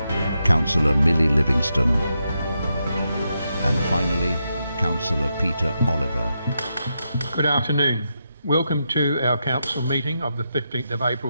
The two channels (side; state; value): both; inverted; correlation -0.85